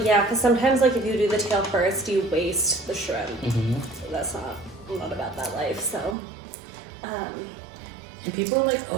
yeah, because sometimes, like, if you do the tail first, you waste the shrimp. So that's not about that life, so... And people are like,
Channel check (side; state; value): left; drops out; at 6.2 s